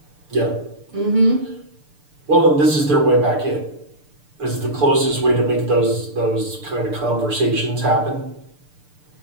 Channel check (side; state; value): left; late; 6.7 ms